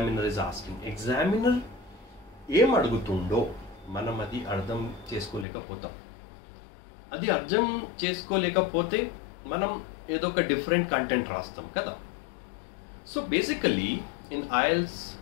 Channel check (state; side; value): drops out; right; at 5.5 s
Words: is asking. Examiner ఏం అడుగుతుండో మనం అది అర్థం చేసుకోలేకపోతాం. అది అర్థం చేసుకోలేకపోతే మనం ఏదో ఒక different content రాస్తాం కదా. So basically in IELTS